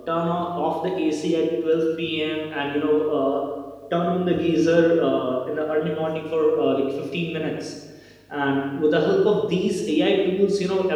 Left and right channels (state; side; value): identical; both; correlation 1.00